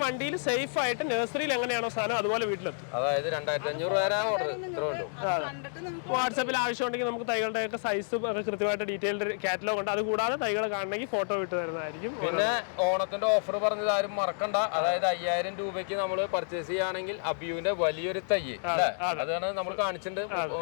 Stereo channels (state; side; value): silent; right; digital silence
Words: വണ്ടിയിൽ സേഫ് ആയിട്ട് നഴ്സറിയിൽ എങ്ങനെയാണോ സാധനം അതുപോലെ വീട്ടിലെത്തും. അതായത് 2500 വരെ ഓർഡർ ഇത്രേ ഉള്ളൂ. വാട്സാപ്പിൽ ആവശ്യമുണ്ടെങ്കിൽ നമുക്ക് തൈകളുടെ ഒക്കെ സൈസും ഒക്കെ കൃത്യമായിട്ട് ഡീറ്റെയിൽഡ് കാറ്റലോഗ് ഉണ്ട്. അത് കൂടാതെ തൈകൾ കാണണമെങ്കിൽ ഫോട്ടോ വിട്ട് തരുന്നതായിരിക്കും. പിന്നെ ഓണത്തിന്റെ ഓഫർ പറഞ്ഞത് ആരും മറക്കണ്ട. അതായത് 5000 രൂപയ്ക്ക് നമ്മൾ പർച്ചേസ് ചെയ്യുകയാണെങ്കിൽ അബിയുവിന്റെ വലിയൊരു തൈ അതാണ് നമ്മൾ കാണിച്ചിട്ടുണ്ട്.